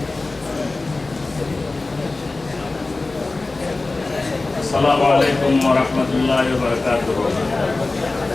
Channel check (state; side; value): quieter; right; 3.3 dB